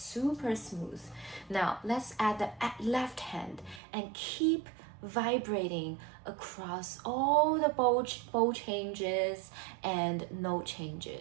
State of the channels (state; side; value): drops out; left; at 3.8 s